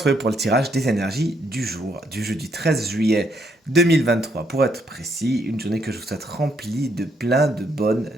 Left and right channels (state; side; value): normal; both; correlation 0.73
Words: pour le tirage des énergies du jour, du jeudi 13 juillet 2023. Pour être précis, une journée que je vous souhaite remplie de plein de bonnes